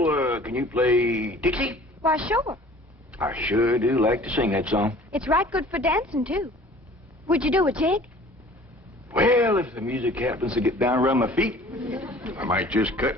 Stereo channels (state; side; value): normal; both; correlation 0.48